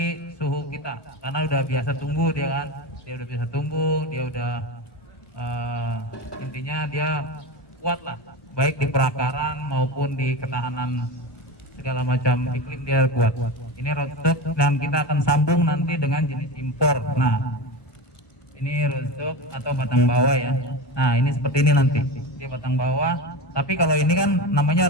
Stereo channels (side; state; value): right; late; 1.2 ms